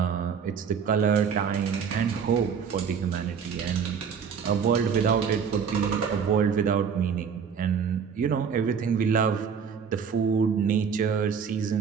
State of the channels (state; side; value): quieter; left; 6.7 dB